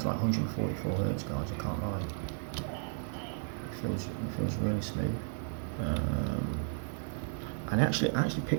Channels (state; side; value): silent; left; digital silence